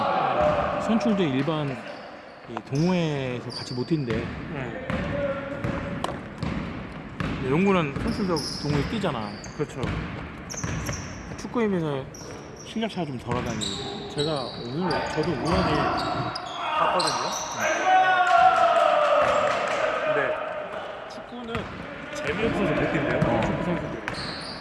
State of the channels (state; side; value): identical; both; correlation 1.00